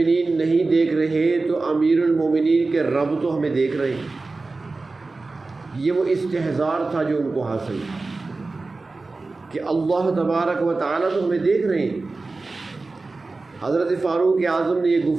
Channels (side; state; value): left; quieter; 3.6 dB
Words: نہیں دیکھ رہے تو امیر المومنین کے رب تو ہمیں دیکھ رہے ہیں۔ یہ وہ استحضار تھا جو ان کو حاصل تھا کہ اللہ تبارک و تعالیٰ تو ہمیں دیکھ رہے ہیں۔ حضرت فاروق اعظم نے یہ